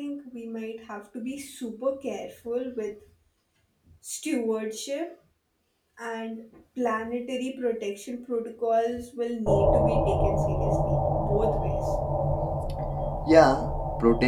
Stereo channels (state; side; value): identical; both; correlation 1.00